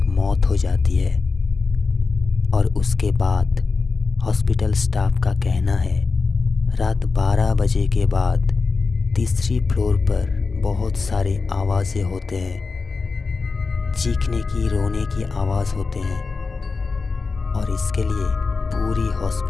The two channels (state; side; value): quieter; right; 4.4 dB